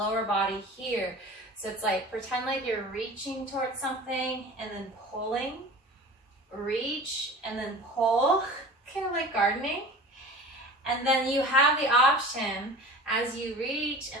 body here. So it's like, pretend like you're reaching towards something and then pulling. Reach and then pull, kind of like gardening. And then you have the option, as you reach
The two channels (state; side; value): normal; both; correlation 0.38